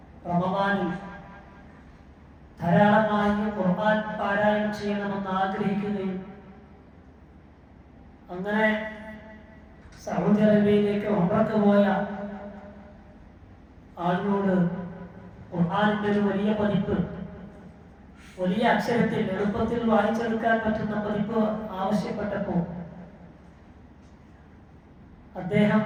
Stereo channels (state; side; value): identical; both; correlation 1.00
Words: റമദാനിൽ ധാരാളമായി ഖുർആൻ പാരായണം ചെയ്യണമെന്ന് ആഗ്രഹിക്കുകയും അങ്ങനെ സൗദി അറേബ്യയിലേക്ക് ഉംറക്ക് പോയ ആളിനോട് ഖുർആനിന്റെ ഒരു വലിയ പതിപ്പ്, വലിയ അക്ഷരത്തിൽ എളുപ്പത്തിൽ വായിച്ചെടുക്കാൻ പറ്റുന്ന പതിപ്പ് ആവശ്യപ്പെട്ടപ്പോൾ